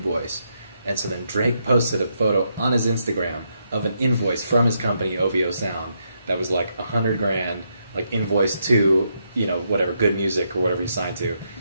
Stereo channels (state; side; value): inverted; both; correlation -0.79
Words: And so then Drake posted a photo on his Instagram of an invoice from his company OVO Sound that was like $100,000, like invoice to whatever Good Music or whatever he signed to,